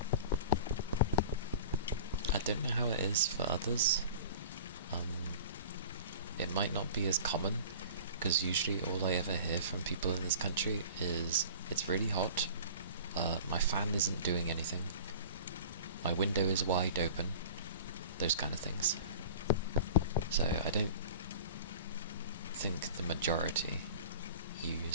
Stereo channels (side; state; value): both; inverted; correlation -0.40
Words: I don't know how it is for others. It might not be as common, because usually all I ever hear from people in this country is, it's really hot, my fan isn't doing anything, my window is wide open, those kind of things. So I don't think the majority